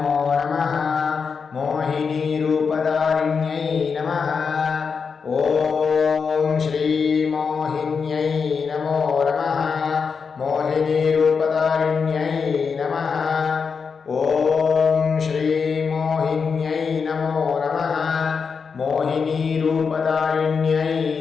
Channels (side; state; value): right; quieter; 5.7 dB